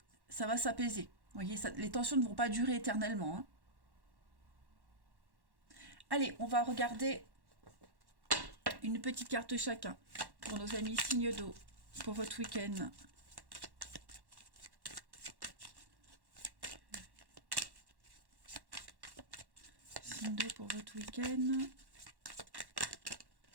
ça va s'apaiser. Vous voyez, les tensions ne vont pas durer éternellement. Hein. Allez, on va regarder une petite carte chacun pour nos amis signes d'eau pour votre week-end. Signe d'eau pour votre week-end.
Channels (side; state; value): left; late; 1.1 ms